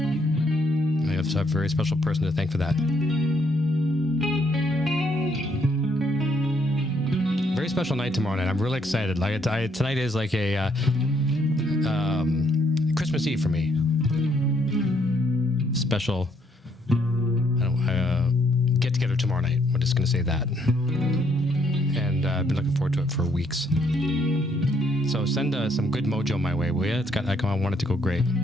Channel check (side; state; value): both; normal; correlation 0.70